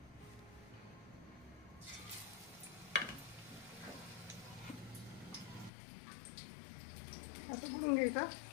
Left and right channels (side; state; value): right; drops out; at 5.7 s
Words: असं बुडवून घ्यायचं,